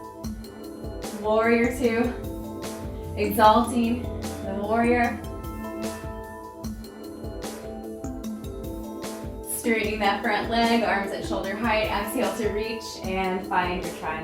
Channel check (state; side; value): identical; both; correlation 1.00